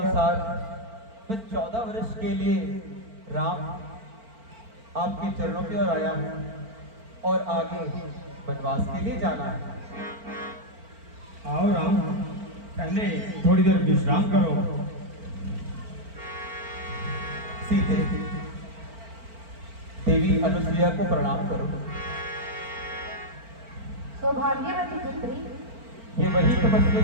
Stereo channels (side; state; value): left; late; 4.4 ms